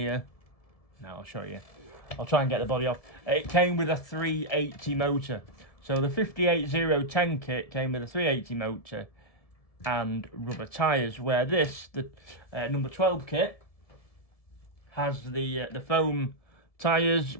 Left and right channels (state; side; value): late; right; 1.7 ms